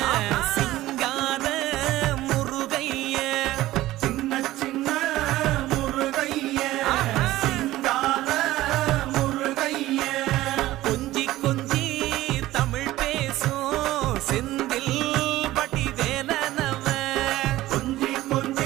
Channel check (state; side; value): quieter; left; 16.1 dB